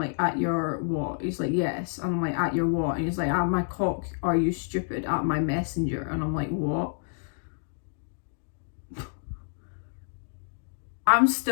at your what? He's like, yes. And I'm like, at your what? And he's like, at my cock, are you stupid? At my messenger. And I'm like, what? I'm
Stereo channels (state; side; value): silent; right; digital silence